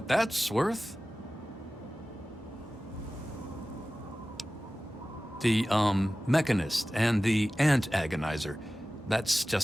that's worth. The, Mechanist and the Ant Agonizer. That's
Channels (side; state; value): both; normal; correlation 0.96